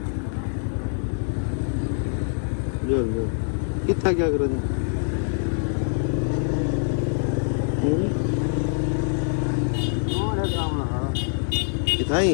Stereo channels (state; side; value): silent; right; digital silence